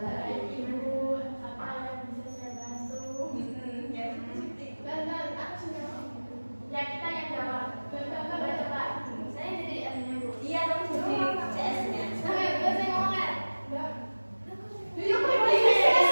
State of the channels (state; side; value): inverted; both; correlation -1.00